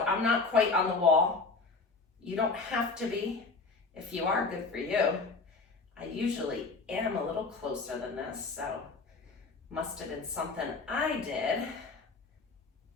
I'm not quite on the wall. You don't have to be. If you are, good for you. I usually am a little closer than this, so Must have been something I did.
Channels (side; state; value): right; quieter; 4.1 dB